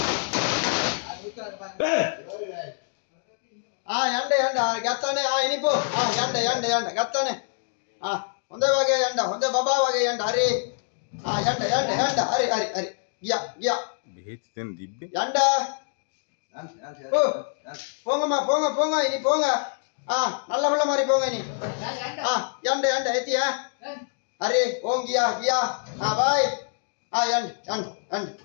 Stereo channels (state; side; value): silent; right; digital silence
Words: yanda gattane inipo yanda gattane honda wage yanda honda baba wage yanda hari yanda hari giya behet den dibbe yanda போங்க இனி போங்க நல்ல புள்ள மாதிரி போங்க இனி yanda எத்தியா அரே ஓம் கியா பாய்